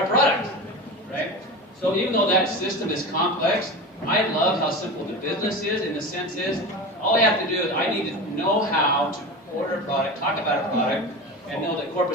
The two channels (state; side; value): normal; both; correlation 0.27